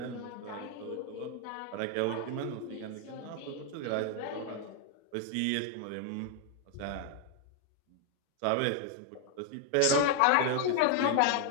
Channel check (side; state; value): both; different; correlation 0.00